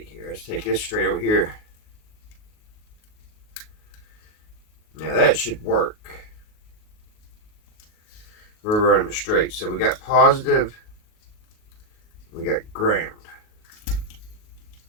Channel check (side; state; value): right; late; 38 ms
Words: here. Let's take this straight over here. Now that should work. We're running straight. So we got positive. We got ground.